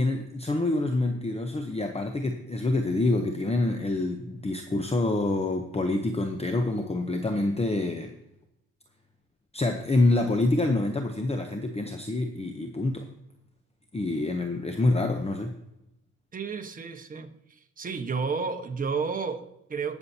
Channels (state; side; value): normal; both; correlation 0.74